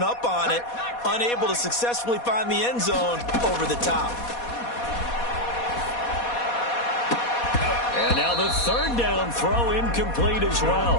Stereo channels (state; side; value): late; right; 4.2 ms